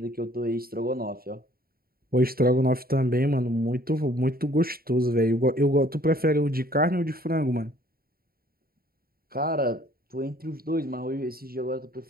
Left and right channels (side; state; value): left; late; 0.43 ms